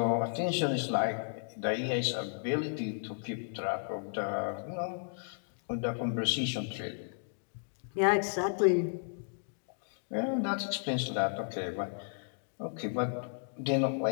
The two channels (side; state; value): right; silent; digital silence